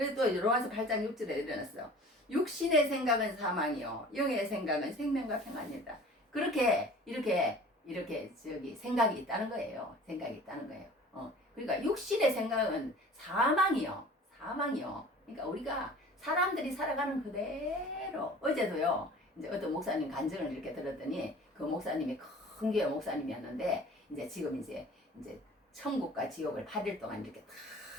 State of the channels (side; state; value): both; normal; correlation 0.45